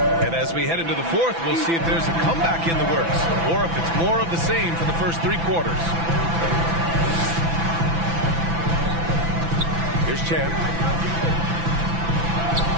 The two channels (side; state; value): left; late; 6.0 ms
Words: And as we head into the fourth, we'll see if there's a comeback in the works or if it's more of the same for the first 3 quarters. Here's Champ.